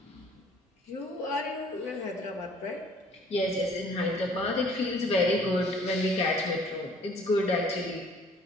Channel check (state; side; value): normal; both; correlation 0.56